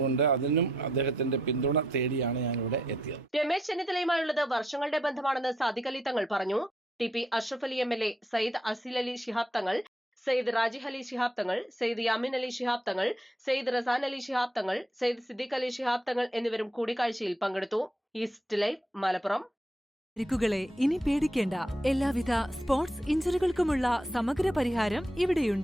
അതിനും അദ്ദേഹത്തിന്റെ പിന്തുണ തേടിയാണ് ഞാനിവിടെ എത്തിയത്. രമേശ് ചെന്നിത്തലയുമായുള്ളത് വർഷങ്ങളുടെ ബന്ധമാണെന്ന് സാദിഖ് അലി തങ്ങൾ പറഞ്ഞു. T P Ashraf Ali M L A, Sayyid Aseel Ali Shihab Thangal, Sayyid റാജിഹ് Ali Shihab Thangal, Sayyid Yamin Ali Shihab Thangal, Sayyid Razan Ali Shihab Thangal, Sayyid Siddique Ali Shihab തങ്ങൾ എന്നിവരും കൂടിക്കാഴ്ചയിൽ പങ്കെടുത്തു. East live, Malappuram. പരിക്കുകളെ ഇനി പേടിക്കേണ്ട. എല്ലാവിധ സ്പോർട്സ് ഇഞ്ചറികൾക്കുമുള്ള സമഗ്ര പരിഹാരം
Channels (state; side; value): normal; both; correlation 0.76